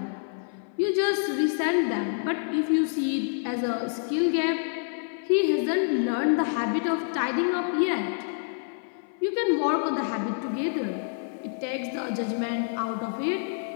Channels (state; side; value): silent; right; 58 dB below the other